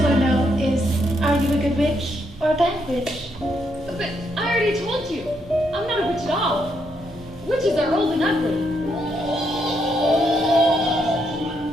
to know is, are you a good witch or a bad witch? But I already told you, I'm not a witch at all. Witches are old and ugly.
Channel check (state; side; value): normal; both; correlation 0.77